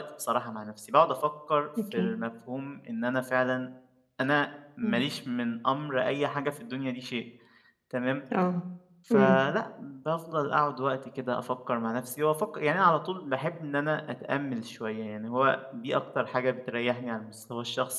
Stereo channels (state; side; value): identical; both; correlation 1.00